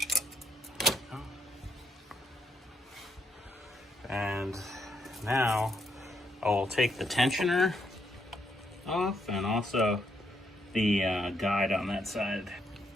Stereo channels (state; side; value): normal; both; correlation 0.75